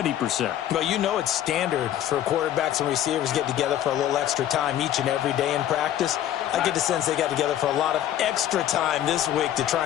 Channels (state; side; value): quieter; right; 11.7 dB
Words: Well, you know it's standard for quarterbacks and receivers get together for a little extra time each and every day in practice. I get the sense they got together for a lot of extra time this week to